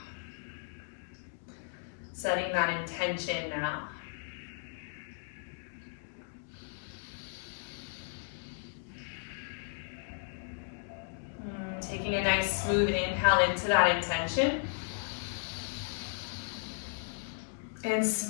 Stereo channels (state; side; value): silent; right; digital silence